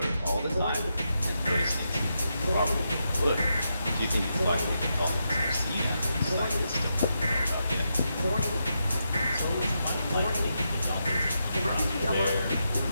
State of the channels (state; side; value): inverted; both; correlation -0.84